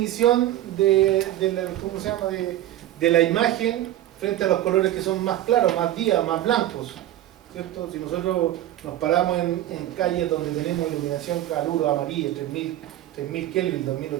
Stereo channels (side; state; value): left; quieter; 13.6 dB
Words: de la imagen frente a los colores que son más claros, más días, más blancos. ¿Cierto? Si nosotros nos paramos en calles donde tenemos iluminación caluro amarilla, 3000 Kelvin,